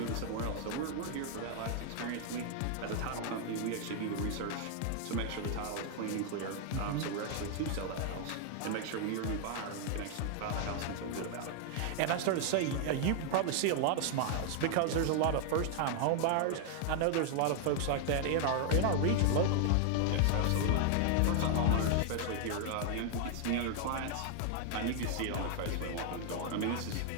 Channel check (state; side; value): different; both; correlation 0.00